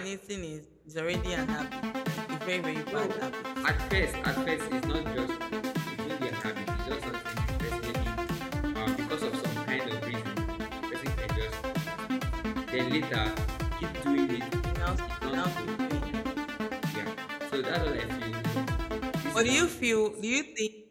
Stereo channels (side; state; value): both; identical; correlation 1.00